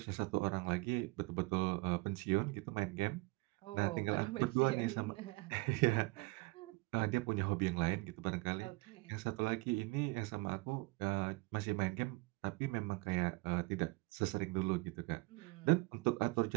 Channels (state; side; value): quieter; left; 25.2 dB